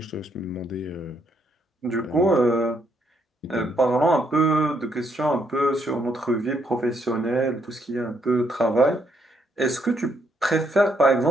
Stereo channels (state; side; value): normal; both; correlation 0.74